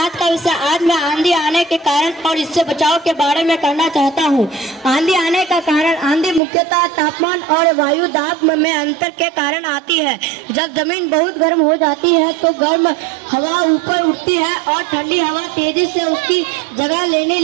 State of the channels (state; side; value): drops out; left; at 6.4 s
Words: का विषय आज मैं आंधी आने के कारण और इससे बचाव के बारे में कहना चाहता हूँ। आंधी आने का कारण आंधी मुख्यतः तापमान और वायु दाब में अंतर के कारण आती है। जब जमीन बहुत गर्म हो जाती है तो गर्म हवा ऊपर उठती है और ठंडी हवा तेजी से उसकी जगह लेने